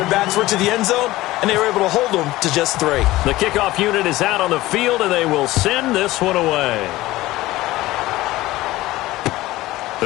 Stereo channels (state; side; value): quieter; right; 17.6 dB